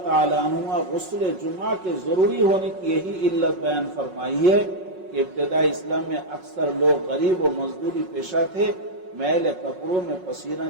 ताला अन्हुमा गुस्ल जुमा के जरूरी होने की यही इल्लत बयान फरमाई है कि इब्तिदा इस्लाम में अक्सर लोग गरीब और मजदूरी पेशा थे, मैले कपड़ों में पसीना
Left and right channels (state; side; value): late; left; 5.4 ms